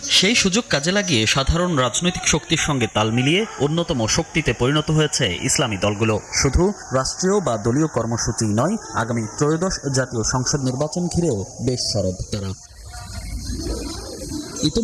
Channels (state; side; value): identical; both; correlation 1.00